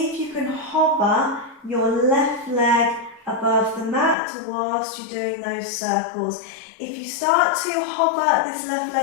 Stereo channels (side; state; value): right; drops out; at 4.2 s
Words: if you can hover your left leg above the mat whilst you're doing those circles. If you start to hover this left